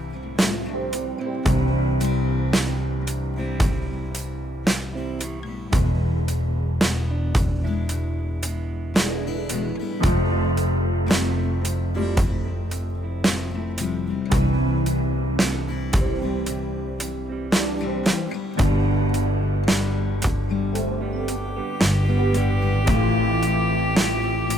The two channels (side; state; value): both; normal; correlation 0.76